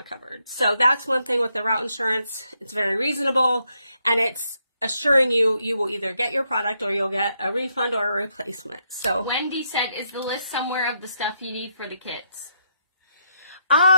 covered. So that's one thing with the route insurance. It's very reasonable and it's assuring you will either get your product or you'll get a refund or a replacement. So Wendy said, is the list somewhere of the stuff you need for the kits?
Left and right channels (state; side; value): inverted; both; correlation -0.78